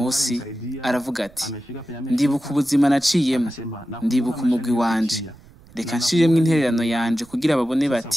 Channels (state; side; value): noise; right; rumble, 25 dB below the sound